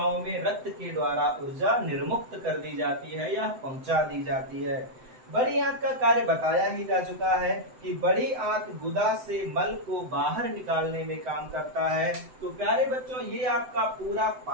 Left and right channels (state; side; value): late; left; 7.8 ms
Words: में रक्त के द्वारा ऊर्जा निर्मुक्त कर दी जाती है या पहुंचा दी जाती है। बड़ी आंत का कार्य बताया ही जा चुका है कि बड़ी आंत गुदा से मल को बाहर निकालने में काम करता है। तो प्यारे बच्चों, ये आपका पूरा